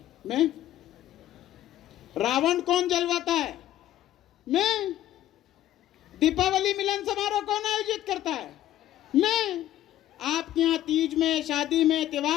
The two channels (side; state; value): right; quieter; 13.0 dB